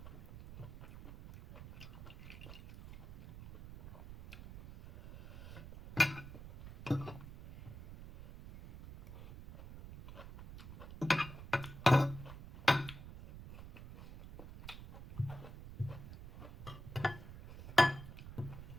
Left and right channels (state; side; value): noise; right; rumble, 13 dB below the sound